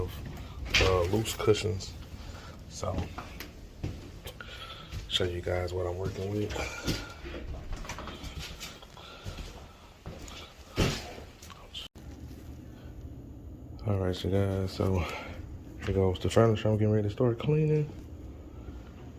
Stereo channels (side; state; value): both; identical; correlation 1.00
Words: loose cushions. So, show you guys what I'm working with. All right, you guys. So here goes the furniture. I'm getting ready to start cleaning.